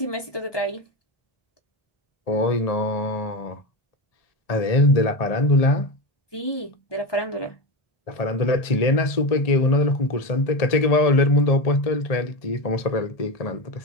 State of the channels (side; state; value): right; late; 1.7 ms